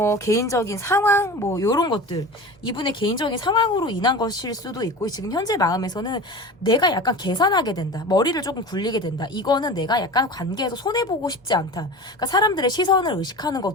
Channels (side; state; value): both; normal; correlation 0.33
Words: 개인적인 상황 뭐 요런 것들 이분의 개인적인 상황으로 인한 것일 수도 있고 지금 현재 마음에서는 내가 약간 계산하게 된다. 머리를 조금 굴리게 된다. 이거는 내가 약간 관계에서 손해보고 싶지 않다. 그러니까 사람들의 시선을 의식하는